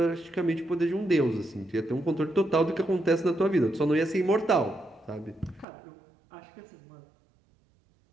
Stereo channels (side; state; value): left; drops out; at 5.7 s